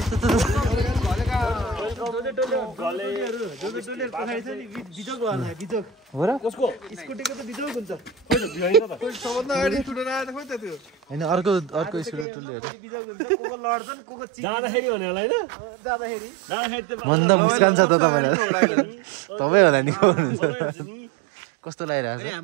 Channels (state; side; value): drops out; left; at 12.2 s